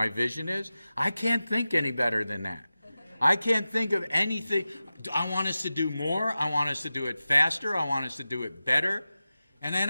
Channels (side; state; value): both; inverted; correlation -0.94